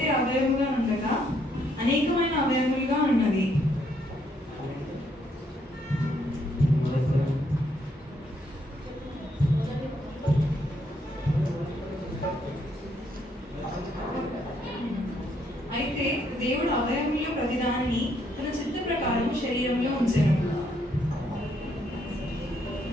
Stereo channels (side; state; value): both; normal; correlation 0.72